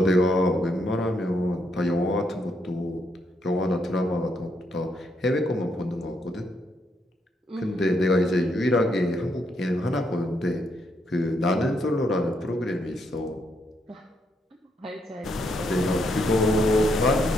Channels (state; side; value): normal; both; correlation 0.76